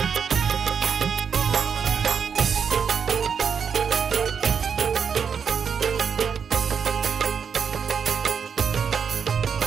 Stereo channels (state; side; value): quieter; left; 6.8 dB